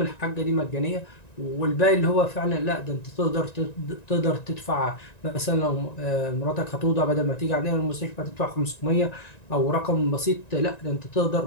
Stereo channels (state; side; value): late; right; 1.9 ms